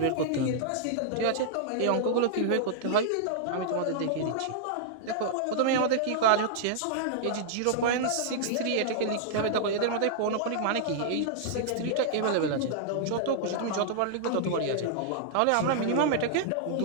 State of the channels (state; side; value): different; both; correlation -0.01